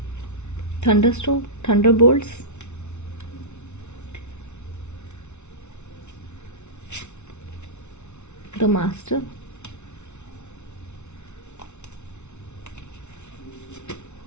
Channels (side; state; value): right; late; 0.82 ms